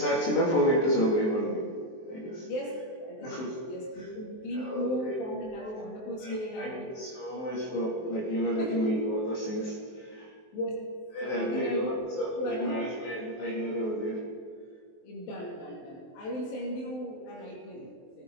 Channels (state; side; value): late; right; 23 ms